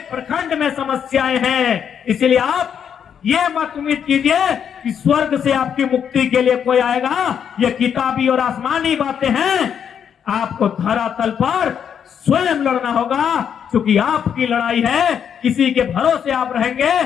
प्रखंड में समस्याएं हैं। इसलिए आप ये मत उम्मीद कीजिए कि स्वर्ग से आपकी मुक्ति के लिए कोई आएगा। ये किताबी और आसमानी बातें हैं। आपको धरातल पर स्वयं लड़ना होगा, क्योंकि आपकी लड़ाई है। किसी के भरोसे आप रहेंगे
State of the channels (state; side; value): quieter; right; 8.1 dB